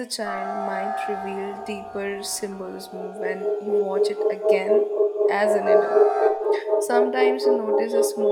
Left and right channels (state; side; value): identical; both; correlation 1.00